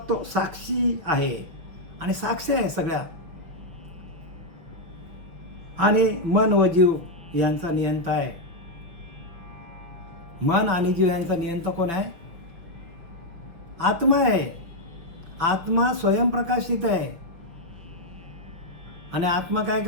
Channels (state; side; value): late; left; 6.1 ms